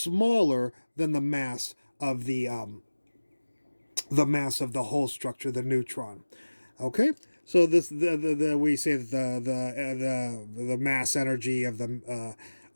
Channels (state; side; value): inverted; both; correlation -1.00